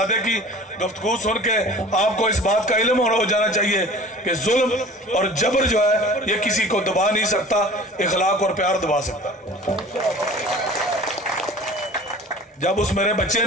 کی گفتگو سن کے آپ کو اس بات کا علم ہو جانا چاہیے کہ ظلم اور جبر جو ہے یہ کسی کو دبا نہیں سکتا، اخلاق اور پیار دبا سکتا۔ جب اس میرے بچے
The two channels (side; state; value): both; normal; correlation 0.43